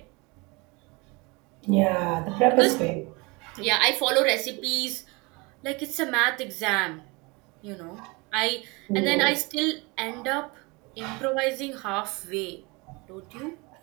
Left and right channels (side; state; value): left; quieter; 26.9 dB